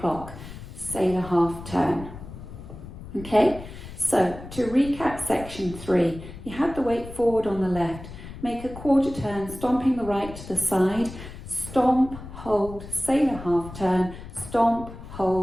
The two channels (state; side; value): noise; left; rumble, 13 dB below the sound